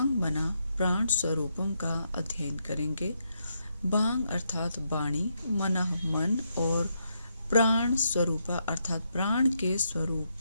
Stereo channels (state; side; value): inverted; both; correlation -0.79